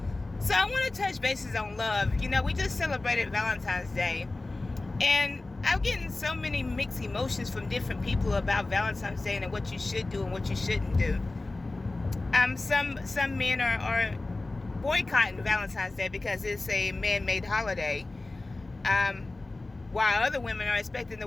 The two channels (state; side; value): quieter; right; 3.1 dB